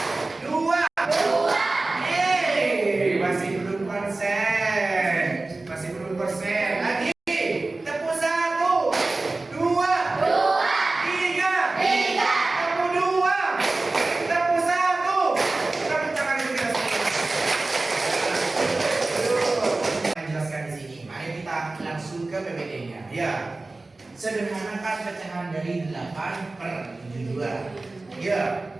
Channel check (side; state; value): left; quieter; 3.2 dB